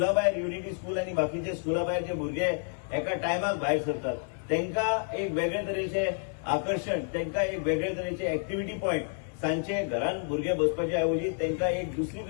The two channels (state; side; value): silent; right; 55 dB below the other